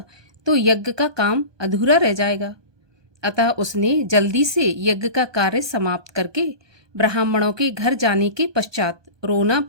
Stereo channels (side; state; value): left; late; 1.2 ms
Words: तो यज्ञ का काम अधूरा रह जाएगा। अतः उसने जल्दी से यज्ञ का कार्य समाप्त करके ब्राह्मणों के घर जाने के पश्चात रोना